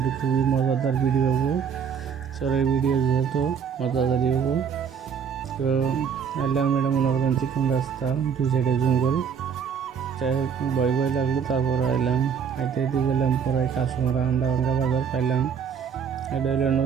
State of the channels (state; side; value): quieter; left; 7.2 dB